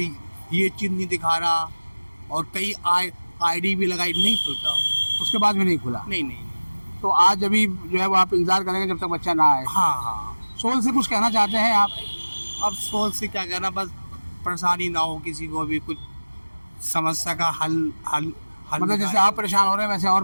चीज़ नहीं दिखा रहा, और कई ID भी लगाई, नहीं खुलता। उसके बाद भी नहीं खुला? नहीं नहीं नहीं। तो आज अभी जो है वो आप इंतजार करेंगे जब तक बच्चा ना आए? हाँ हाँ। सोल से कुछ कहना चाहते हैं आप? अब सोच से क्या कहना, बस परेशानी ना हो किसी को भी, कुछ समस्या का हल मतलब जैसे आप परेशान हो रहे हैं वैसे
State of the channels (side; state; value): both; inverted; correlation -1.00